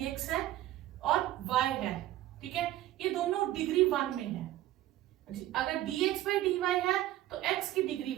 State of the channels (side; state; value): left; quieter; 14.6 dB